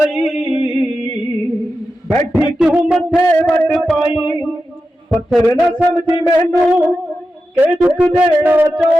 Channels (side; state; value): both; normal; correlation 0.91